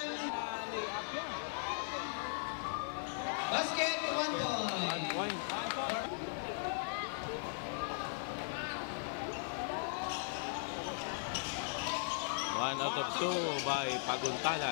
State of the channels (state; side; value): silent; right; digital silence